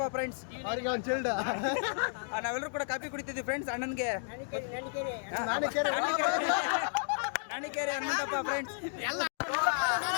ಫ್ರೆಂಡ್ಸ್. ನಾವೆಲ್ಲರೂ ಕೂಡ ಕಾಫಿ ಕುಡಿತಿದ್ವಿ ಫ್ರೆಂಡ್ಸ್. ಅಣ್ಣನ್ಗೆ ನಾಣಿಕೇರಿ ಹನುಮಂತಪ್ಪ ಫ್ರೆಂಡ್ಸ್.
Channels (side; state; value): right; silent; digital silence